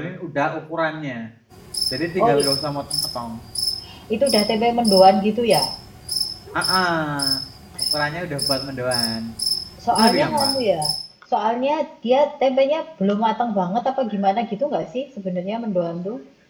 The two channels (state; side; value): identical; both; correlation 1.00